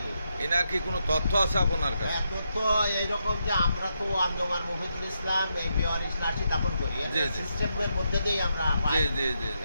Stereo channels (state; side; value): inverted; both; correlation -0.82